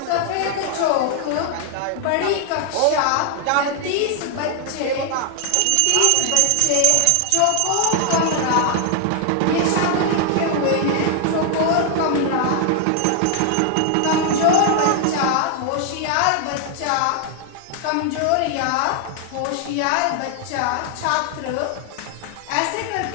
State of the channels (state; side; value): different; both; correlation 0.00